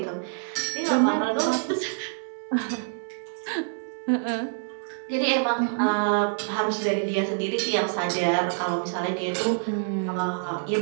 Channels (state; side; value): silent; left; 61 dB below the other